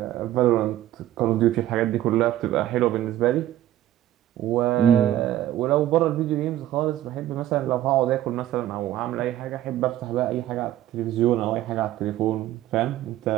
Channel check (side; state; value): left; quieter; 13.4 dB